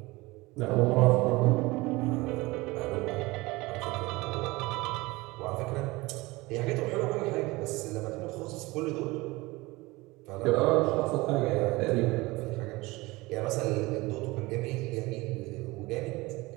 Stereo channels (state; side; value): quieter; left; 21.9 dB